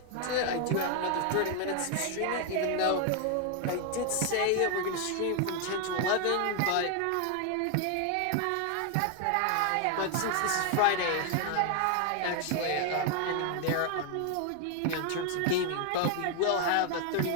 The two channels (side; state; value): both; different; correlation 0.00